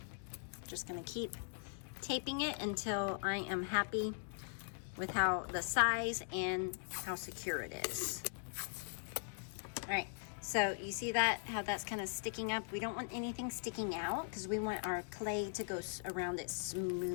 Just gonna keep taping it until I am happy with how the size and how secure it is. All right, so you see that, how that's kind of sticking up? We don't want anything sticking out, because we want our clay to go around it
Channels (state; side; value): silent; right; digital silence